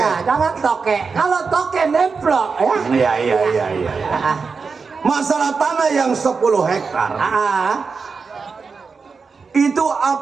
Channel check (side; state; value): left; quieter; 5.0 dB